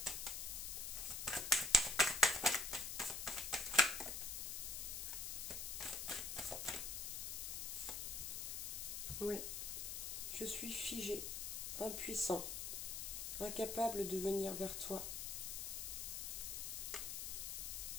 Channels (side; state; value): left; noise; hiss, 3 dB below the sound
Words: suis figé, impuissant, incapable de venir vers toi.